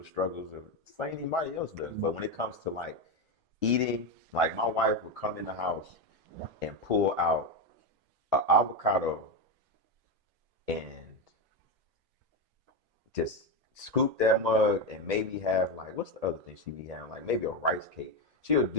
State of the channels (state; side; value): normal; both; correlation 0.11